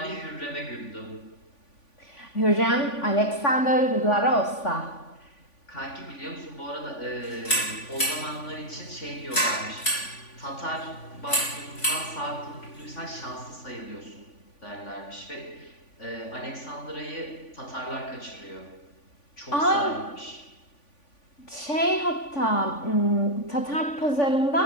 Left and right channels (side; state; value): right; late; 3.5 ms